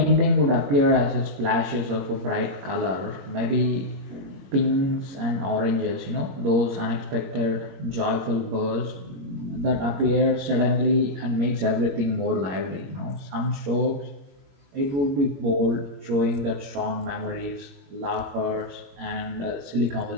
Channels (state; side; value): late; left; 21 ms